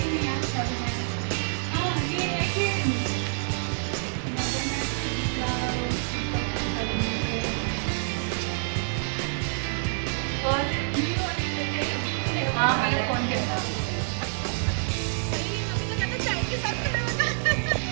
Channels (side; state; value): left; silent; digital silence